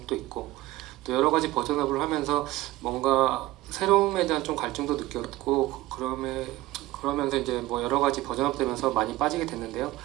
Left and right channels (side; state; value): left; quieter; 17.2 dB